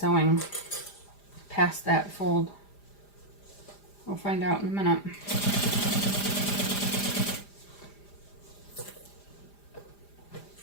past that fold. We'll find out in a minute.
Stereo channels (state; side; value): late; right; 5.0 ms